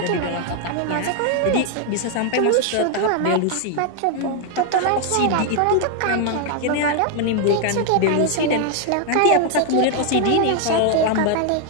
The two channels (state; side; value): different; both; correlation 0.00